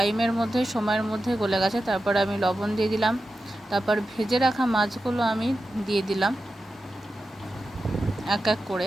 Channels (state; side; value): normal; both; correlation 0.92